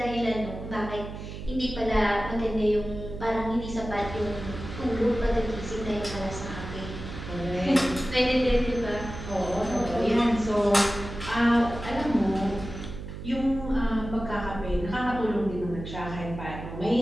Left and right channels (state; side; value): noise; right; hum, 10 dB below the sound